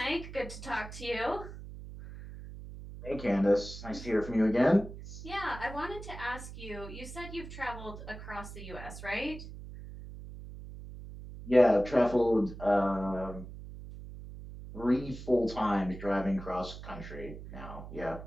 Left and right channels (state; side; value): noise; right; hum, 12 dB below the sound